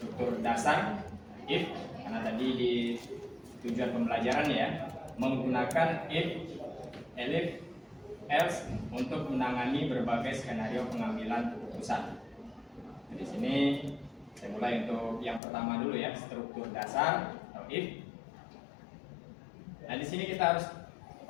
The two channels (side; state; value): right; drops out; at 15.4 s